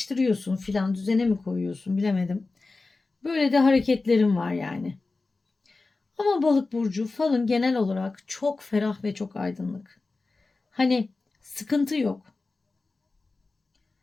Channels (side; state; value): right; quieter; 3.6 dB